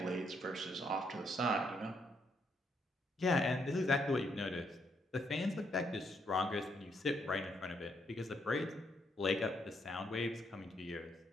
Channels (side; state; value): both; normal; correlation 0.74